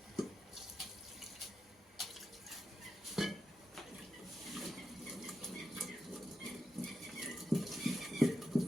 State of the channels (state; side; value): normal; both; correlation 0.88